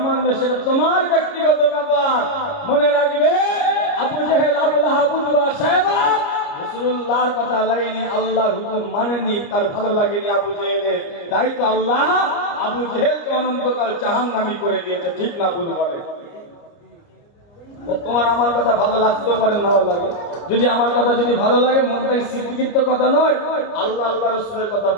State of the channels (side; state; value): right; late; 29 ms